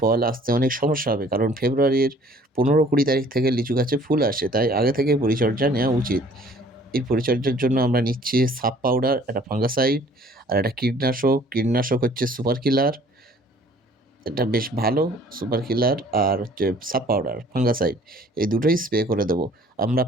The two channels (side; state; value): both; normal; correlation 0.55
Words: আসতে অনেক সমস্যা হবে, কারণ ফেব্রুয়ারির 15-20 তারিখ থেকে লিচু গাছে ফুল আসে, তাই আগে থেকে পরিচর্যা নেওয়া উচিত। এই পরিচর্যার জন্য আমরা নিচ্ছি সাব পাউডার, একটা ফাঙ্গাসাইড আর একটা কীটনাশক। কীটনাশক হচ্ছে সুপার কিলার, এটা বেশ ভালো। সুপার কিলার আর হচ্ছে সাব পাউডার, ফাঙ্গাসাইড, এই দুটোই স্প্রে করে দেবো। আমরা